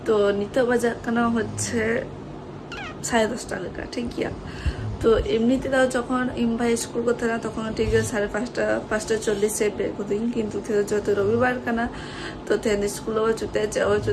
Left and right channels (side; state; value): both; identical; correlation 1.00